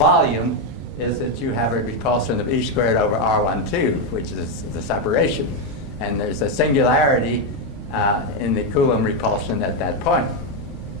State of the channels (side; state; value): both; normal; correlation 0.04